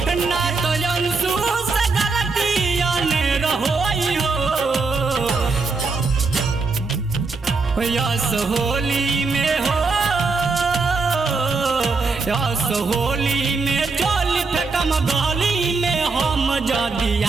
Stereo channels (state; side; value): quieter; left; 4.2 dB